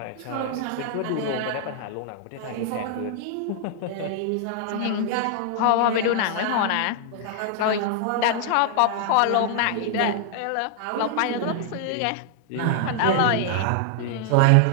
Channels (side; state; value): both; different; correlation 0.00